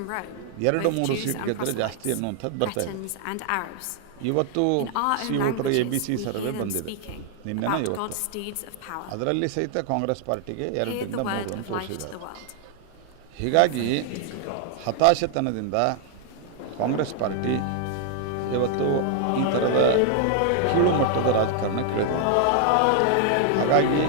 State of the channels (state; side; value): different; both; correlation 0.00